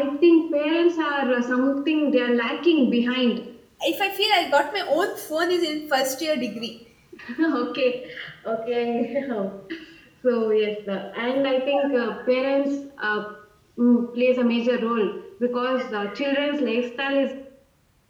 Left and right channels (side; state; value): both; identical; correlation 1.00